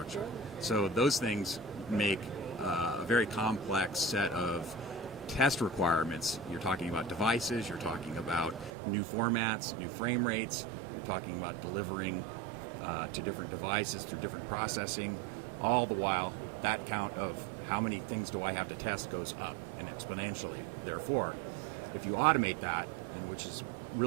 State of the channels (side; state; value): left; drops out; at 8.7 s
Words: So those things make a very complex set of test requirements. You're talking about devices, you're talking about new formats, new frame rates, you're talking about delivering to different devices through different processing. All the while, that count of how many things do I have to test goes up and exponentially. Therefore, if you automate that, and which is